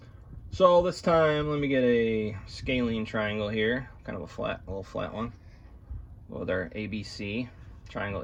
So this time, let me get a scalene triangle here, kind of a little flat one, with our ABC, triangle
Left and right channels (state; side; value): identical; both; correlation 1.00